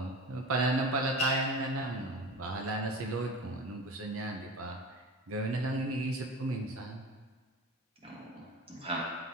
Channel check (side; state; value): both; normal; correlation 0.32